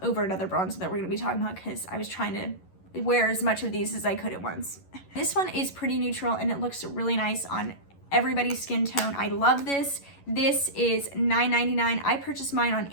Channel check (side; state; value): right; late; 11 ms